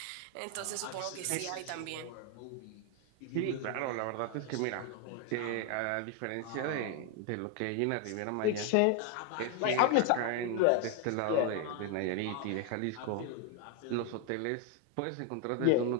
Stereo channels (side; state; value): both; different; correlation 0.01